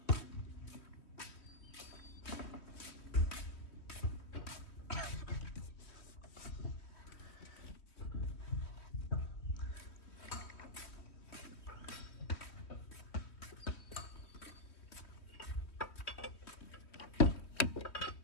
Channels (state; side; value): late; right; 3.2 ms